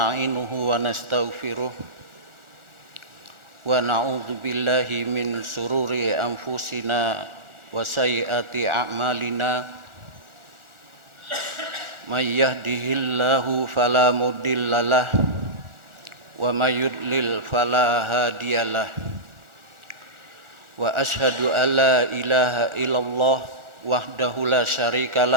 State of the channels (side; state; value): left; late; 1.4 ms